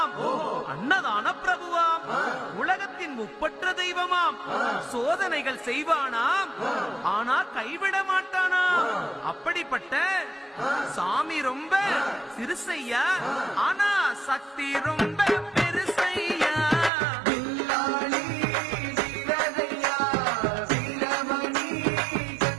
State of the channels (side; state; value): left; drops out; at 16.9 s